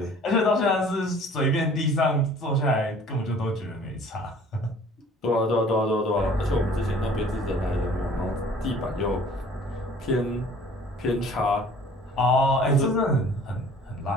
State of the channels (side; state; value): both; normal; correlation 0.51